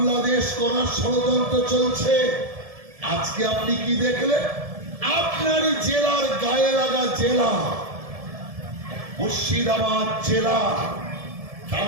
করার ষড়যন্ত্র চলছে। আজকে আপনি কি দেখলেন? আপনারই জেলার গায়ে লাগা জেলা মুর্শিদাবাদ জেলা,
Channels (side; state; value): left; late; 1.7 ms